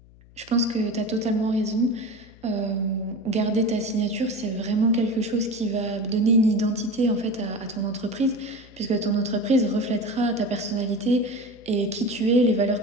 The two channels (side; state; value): left; noise; hum, 24 dB below the sound